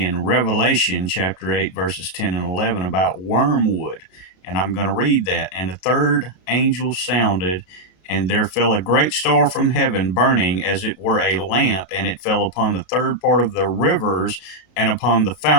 Revelation chapter 8, verses 10 and 11 about wormwood. And I'm going to read that. And the third angel sounded, and there fell a great star from heaven, burning as it were a lamp, and it fell upon the third part of the rivers and upon the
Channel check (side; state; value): right; late; 32 ms